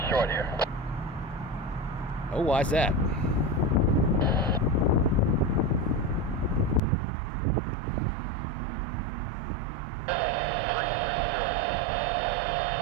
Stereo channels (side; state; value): left; drops out; at 6.8 s